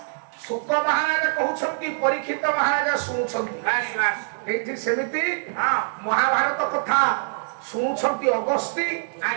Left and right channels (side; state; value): left; silent; digital silence